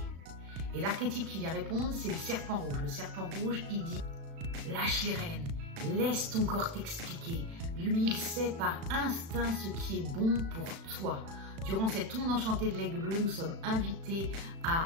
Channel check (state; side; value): late; left; 36 ms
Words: Et l'archétype qui vient répondre, c'est le serpent rouge. Le serpent rouge, il dit lâche les rênes, laisse ton corps t'expliquer. Lui, il sait par instinct ce qui est bon pour toi. Durant cette onde enchantée de l'aigle bleu, nous sommes invités à